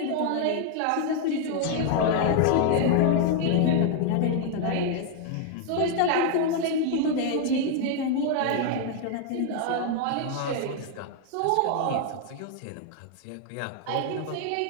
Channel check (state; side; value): different; both; correlation 0.00